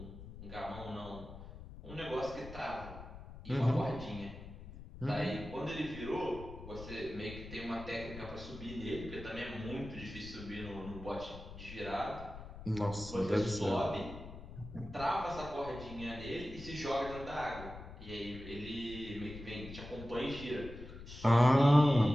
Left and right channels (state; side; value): noise; left; rumble, 13 dB below the sound